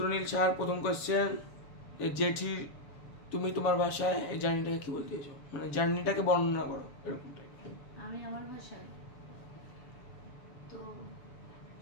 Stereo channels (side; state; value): right; late; 7.0 ms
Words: সাহার প্রথম কোয়েশ্চেন, জেঠি তুমি তোমার ভাষায় এই জার্নিটাকে কি বলতে চাইছো, মানে জার্নিটাকে বর্ণনা করো এরকম টাইপ। আমি আমার ভাষায় তো